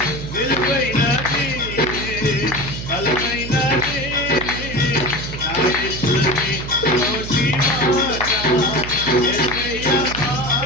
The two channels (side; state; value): right; noise; hum, 8 dB below the sound